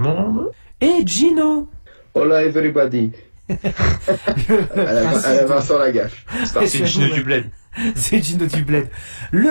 monde. Et Gino. Hola everybody. à la Vincent Lagaffe. C'est Gino du Bled. C'est Gino du Bled.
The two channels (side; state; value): both; inverted; correlation -1.00